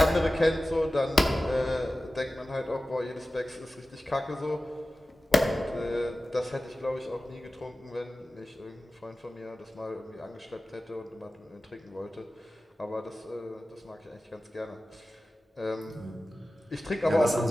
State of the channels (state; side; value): normal; both; correlation 0.95